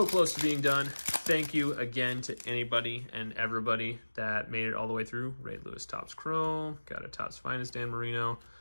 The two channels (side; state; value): both; inverted; correlation -1.00